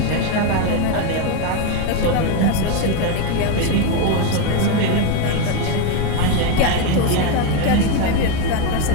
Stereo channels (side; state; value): both; different; correlation 0.03